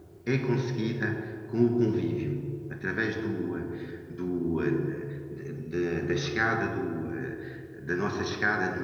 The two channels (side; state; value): both; identical; correlation 1.00